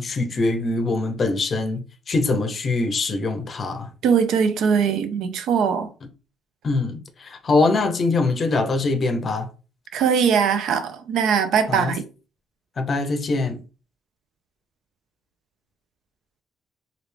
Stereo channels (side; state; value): both; normal; correlation 0.65